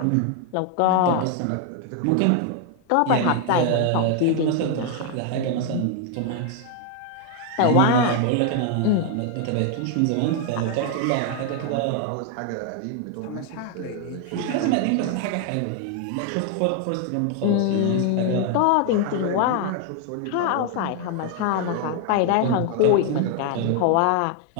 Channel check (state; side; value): different; both; correlation 0.00